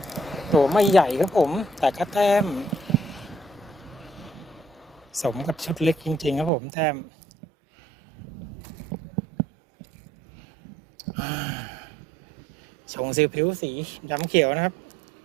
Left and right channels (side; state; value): left; drops out; at 6.5 s